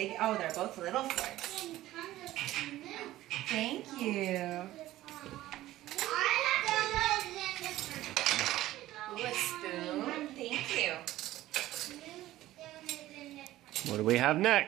Oh, they're both little forks. Thank you. Ooh, a spoon. Thank you. What do we have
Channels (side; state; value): left; quieter; 15.4 dB